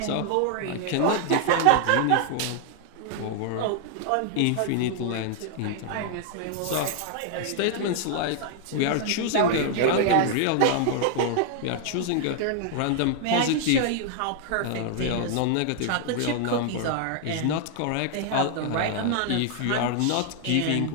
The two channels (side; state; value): both; different; correlation 0.00